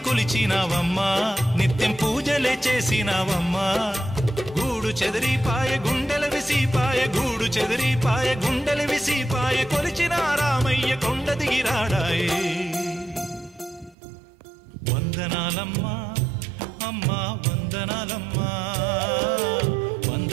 కొలిచినావమ్మా నిత్యం పూజలే చేసినావమ్మా గూడు చెదిరిపాయ గుండెల విసిపాయ గూడు చెదిరిపాయ గుండెల విసిపాయ కొలిచిన రామయ్య కొండ దిగిరాడాయే వందనాలమ్మా అమ్మా వందనాలమ్మా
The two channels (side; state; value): left; drops out; at 14.0 s